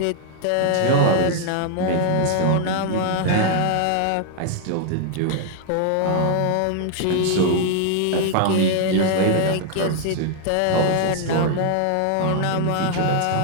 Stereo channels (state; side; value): different; both; correlation 0.00